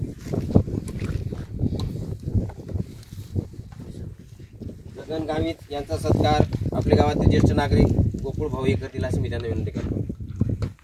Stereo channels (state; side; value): identical; both; correlation 1.00